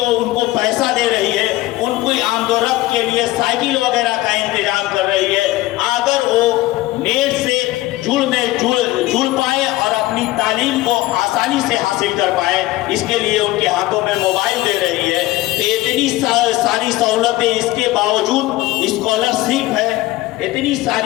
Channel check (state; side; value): quieter; right; 17.6 dB